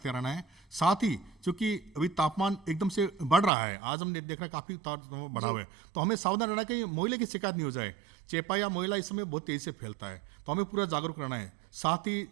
रहना है। साथ ही चूँकि अभी तापमान एकदम से बढ़ रहा है, आज हमने देख रहा है काफ़ी बढ़ा हुआ है, तो हमें सावधान रहना है कि मोइले की शिकायत नहीं हो जाए। चेपा या मोइला इस समय बहुत तेज़ी से फैलता है, तो हमें पूरा जागरूक रहना है। साथ ही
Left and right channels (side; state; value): left; drops out; at 3.5 s